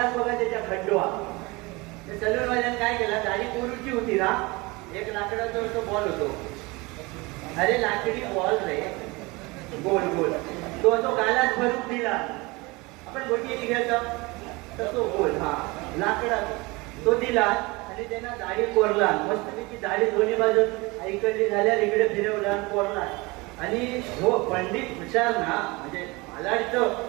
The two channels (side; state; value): left; quieter; 24.4 dB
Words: बघा त्याच्या खड्डो सलून वाल्याने काय केला दाढी कोरूची होती ना एक लाकडाचा तो बॉल होतो अरे लाकडी बॉल रे गोल तो गालात भरून दिला आपण गोटी घ्यायचा तर तो गोल हा लाकडात तो दिला आणि त्यांना दाढी कोरला मस्त त्याची दाढी दोन्ही बाजूत ऐकडली झाल्यावर इकडे फिरवला कोरला आणि हो पंडित हुशार ना म्हणजे मला